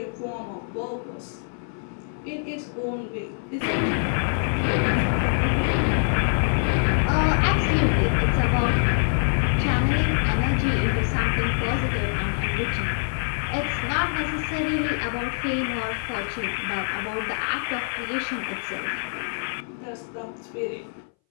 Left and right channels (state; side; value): silent; right; 61 dB below the other